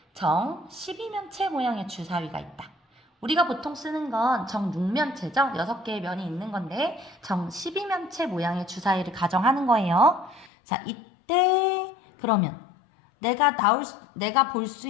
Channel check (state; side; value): drops out; right; at 10.5 s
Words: 정 12면체 모양의 주사위가 있다. 우리가 보통 쓰는 건 정 6면체죠. 6개의 면이 있는 건데 정 12면체 모양의 주사위를 가정하는 거예요. 자, 이때 그러면 내가 볼 수